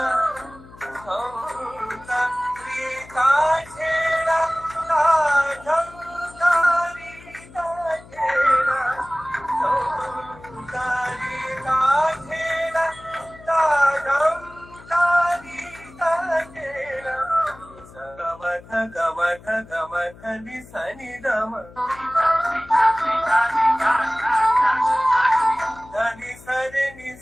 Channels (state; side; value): noise; left; hum, 21 dB below the sound